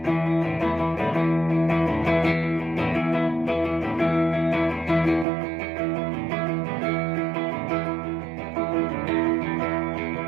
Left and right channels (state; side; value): drops out; left; at 5.2 s